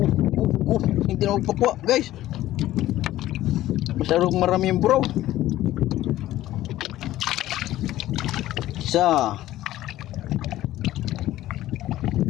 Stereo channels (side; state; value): right; quieter; 14.7 dB